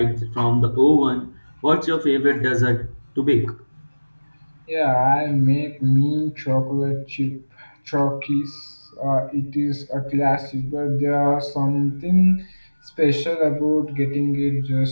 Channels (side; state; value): both; inverted; correlation -1.00